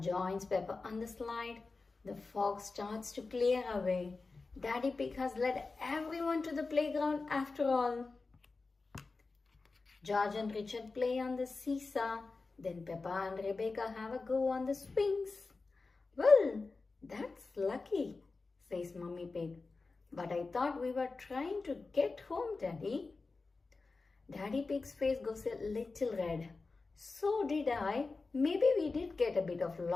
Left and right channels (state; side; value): quieter; right; 3.9 dB